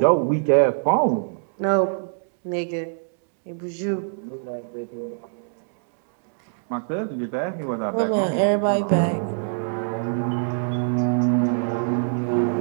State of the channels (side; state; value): left; silent; digital silence